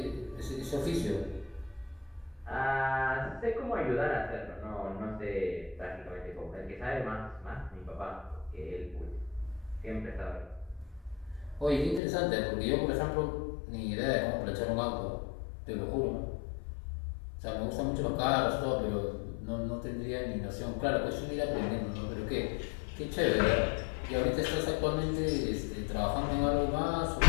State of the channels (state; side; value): drops out; right; at 12.0 s